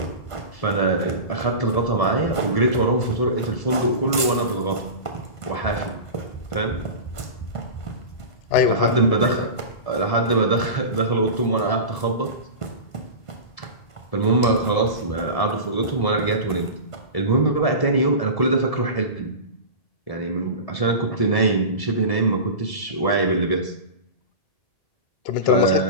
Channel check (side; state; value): right; late; 1.5 ms